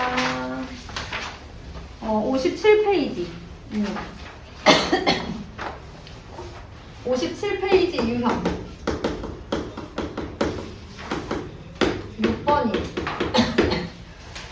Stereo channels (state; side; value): identical; both; correlation 1.00